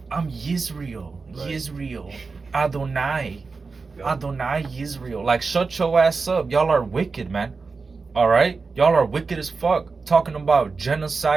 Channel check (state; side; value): quieter; left; 4.4 dB